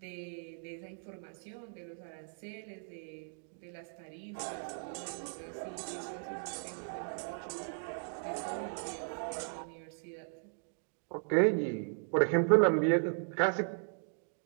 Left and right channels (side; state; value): left; silent; digital silence